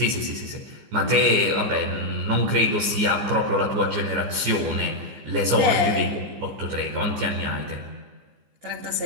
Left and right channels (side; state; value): left; late; 15 ms